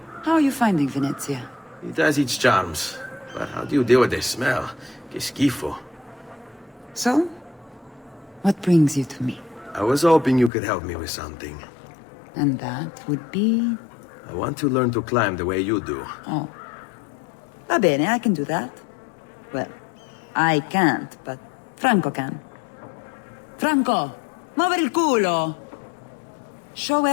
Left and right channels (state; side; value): drops out; right; at 10.5 s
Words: How are you finding Venezia? It has its charms. But how do you deal with the smell? Que schifo. So? What brings you to me? I was hoping you could help me with something. And that would be... I want to learn to climb the way you do. Oh. Va bene, I can do that. Well, I can't, but Franco can. Franco, muovere il culo! Show